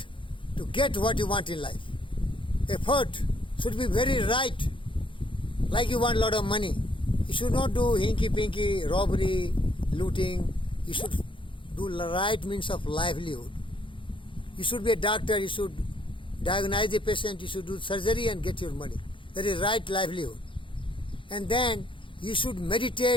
to get what you want in life. Effort should be very right. Like you want a lot of money. You should not do hinky-pinky, robbery, looting. You should do the right means of livelihood. You should be a doctor, you should diagnose the patient, you should do surgery and get your money. That is right livelihood. And then you should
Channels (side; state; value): right; late; 0.25 ms